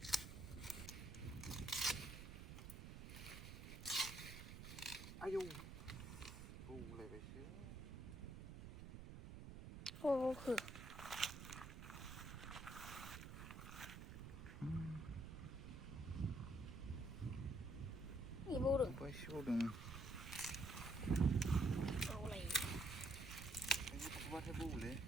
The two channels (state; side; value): noise; right; rumble, 9 dB below the sound